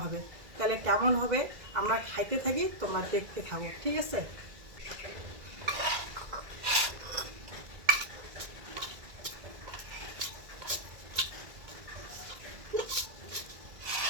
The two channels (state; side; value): late; left; 1.9 ms